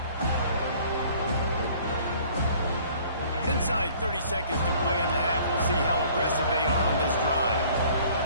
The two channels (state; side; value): inverted; both; correlation -0.54